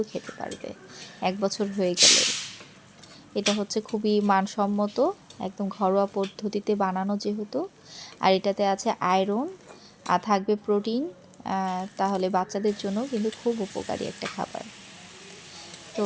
খেতে পারবে ১ বছর হয়ে গেলেই। এটা হচ্ছে খুবই মানসম্মত, একদম ঘরোয়া পদ্ধতিতে বানানো যেহেতু। আর এটাতে আছে আয়রন, থাকবে প্রোটিন, তাহলে বাচ্চাদের জন্য কিন্তু খুব উপকারী একটা খাবার। তো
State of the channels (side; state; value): both; identical; correlation 1.00